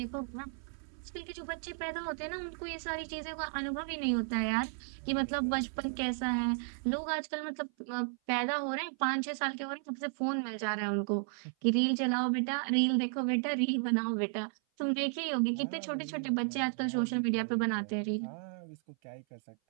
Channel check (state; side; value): silent; left; 55 dB below the other